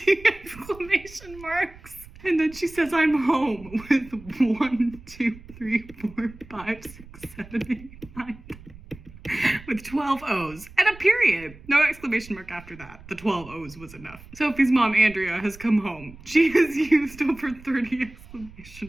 exclamation marks. And then she says, I'm home with 1, 2, 3, 4, 5, 6, 7, 8, 9, 10. With 12 O's and a period. No exclamation mark after that. The 12 O's was enough. Sophie's mom, Andrea, has come home. She has used over 30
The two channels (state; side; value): noise; right; rumble, 19 dB below the sound